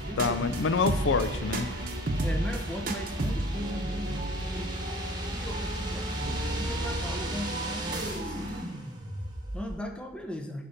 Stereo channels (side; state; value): both; normal; correlation 0.45